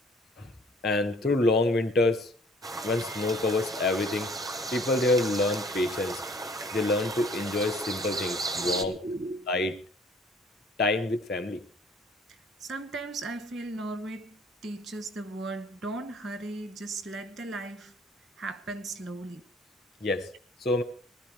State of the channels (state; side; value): normal; both; correlation 0.56